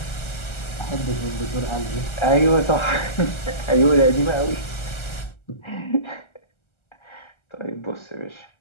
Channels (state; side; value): late; right; 1.3 ms